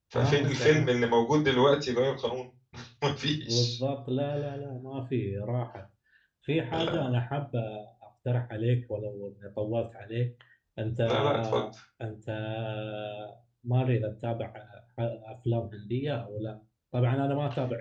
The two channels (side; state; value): both; identical; correlation 1.00